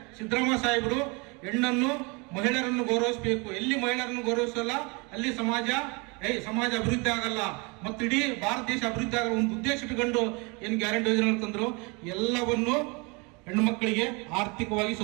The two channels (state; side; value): quieter; left; 29.3 dB